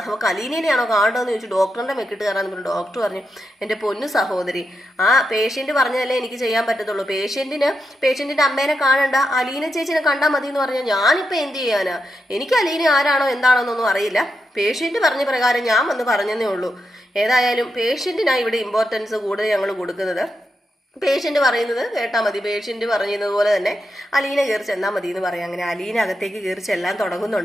അവൾക്ക് അലീനേനെയാണോ കാണേണ്ടതെന്ന് ചോദിച്ചു. ഡോക്ടറിന്റെ മെക്കിട്ട് കയറാന്ന് പറഞ്ഞു. ഡോക്ടർ പറഞ്ഞു, എൻ്റെ പൊന്നു സഹോദരി, ആ പേഷ്യന്റ് പറഞ്ഞതല്ലേ എനിക്ക് ചെയ്യാൻ പറ്റത്തുള്ളൂ, പേഷ്യന്റിന്റെ അമ്മേനെ കാണണ്ട, അലീന ചേച്ചിനെ കണ്ടാൽ മതി എന്ന് പറഞ്ഞാൽ ഞാനിപ്പോൾ എന്ത് ചെയ്യാനാ, എനിക്ക് അലീന ആരാണോ എന്താണോ എന്നൊന്നും അറിയില്ല, പേഷ്യന്റ് പറഞ്ഞ പ്രകാരം ഞാൻ വന്ന് പറഞ്ഞതേ ഉള്ളൂ. ഏതായാലും പേഷ്യന്റിനാണ് ഇവിടെ ഇമ്പോർട്ടൻസ് കൂടുതൽ ഞങ്ങൾ കൊടുക്കുന്നത്. പേഷ്യന്റ് പറയുന്നത് കേട്ടാൽ മതി, പേഷ്യന്റ് പറഞ്ഞതുപോലെ തന്നെ അലീന കയറി ചെന്നാൽ മതി എന്ന് പറയാം. അങ്ങനെ അലീന അകത്തേക്ക് കയറി ചെല്ലാൻ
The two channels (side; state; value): both; normal; correlation 0.86